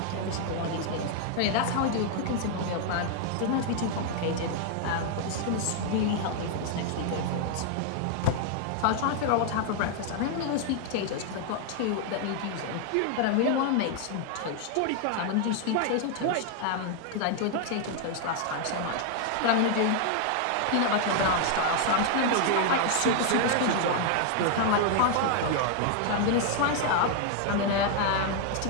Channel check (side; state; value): both; different; correlation 0.00